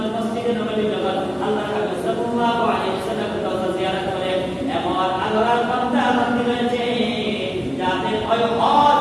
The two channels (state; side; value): identical; both; correlation 1.00